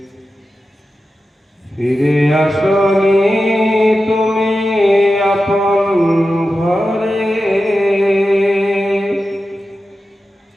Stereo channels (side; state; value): both; normal; correlation 0.92